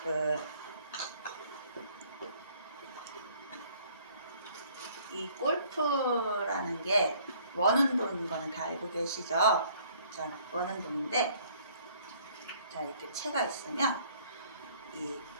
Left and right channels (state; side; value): inverted; both; correlation -0.59